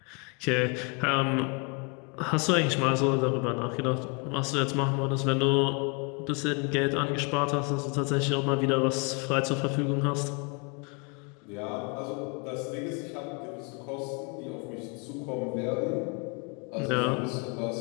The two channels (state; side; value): quieter; right; 33.3 dB